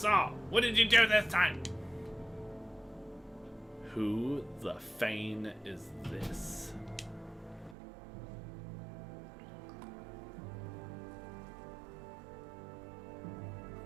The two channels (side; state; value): left; drops out; at 7.8 s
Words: all. What did you do this time? Who the Fane is this?